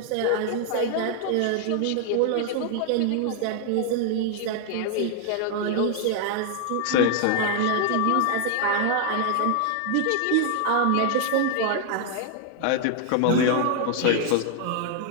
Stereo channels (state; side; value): different; both; correlation 0.00